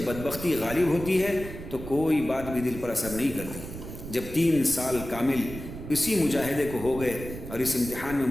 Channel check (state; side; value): noise; right; rumble, 10 dB below the sound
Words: بدبختی غالب ہوتی ہے تو کوئی بات بھی دل پر اثر نہیں کرتی۔ جب 3 سال کامل اسی مجاہدے کو ہو گئے اور اس امتحان میں